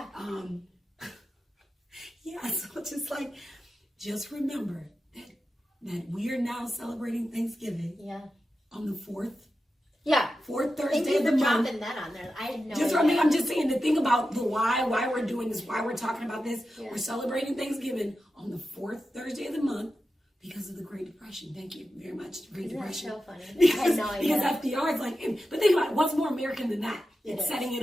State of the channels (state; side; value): normal; both; correlation 0.91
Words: Yeah. So just remember that we are now celebrating Thanksgiving. Yeah. On the 4th. Yeah. 4th Thursday of the month. Dropping that on there. I had no idea. I'm just saying, the thing about the why we're doing this, why we're talking about this. Yeah. We're celebrating Thanksgiving on the 4th Thursday of the month because of the Great Depression. Thank you very much, Great Depression. That's so funny. Because FDR is like, but think about it, what's more American than that? It's setting it